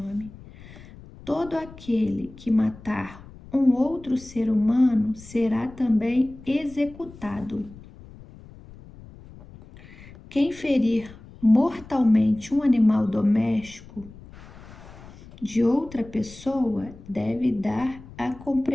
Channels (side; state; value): left; noise; rumble, 19 dB below the sound